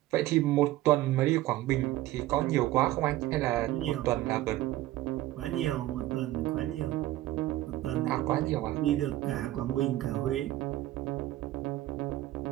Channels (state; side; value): quieter; left; 15.6 dB